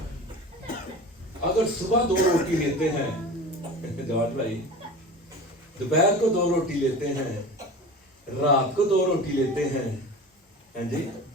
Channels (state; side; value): normal; both; correlation 0.34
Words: अगर सुबह 2 रोटी लेते हैं जवाब भाई, दोपहर को 2 रोटी लेते हैं, रात को 2 रोटी लेते हैं, हैं जी,